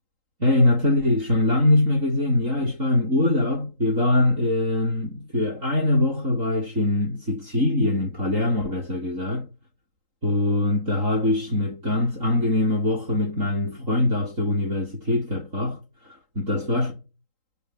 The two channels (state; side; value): late; left; 3.8 ms